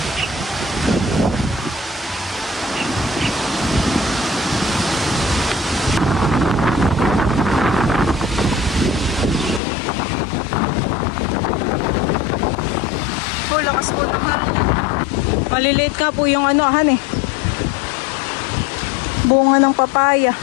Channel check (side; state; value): right; drops out; at 9.6 s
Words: Lakas po naman. Maliliit ka po yung han eh. Bunga ng papaya.